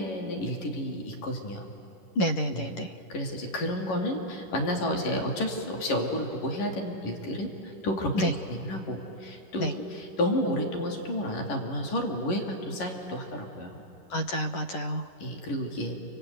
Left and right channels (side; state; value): right; late; 11 ms